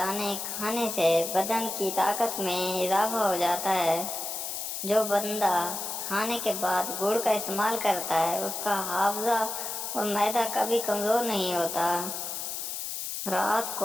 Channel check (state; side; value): noise; left; hiss, 5 dB below the sound